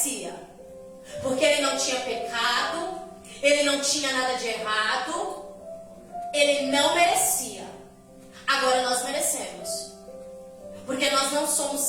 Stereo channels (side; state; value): both; identical; correlation 1.00